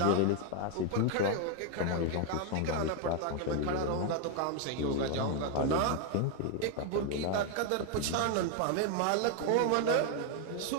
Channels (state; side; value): different; both; correlation 0.01